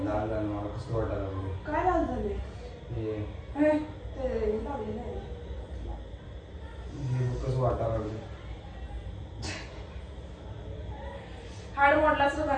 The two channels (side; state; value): both; identical; correlation 1.00